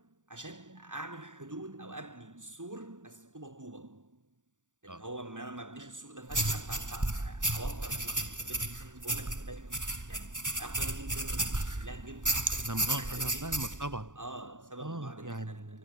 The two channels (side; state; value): left; late; 0.86 ms